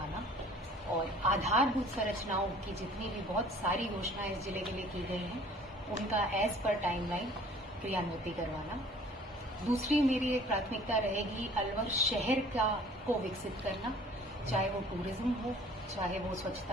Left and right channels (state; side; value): normal; both; correlation 0.51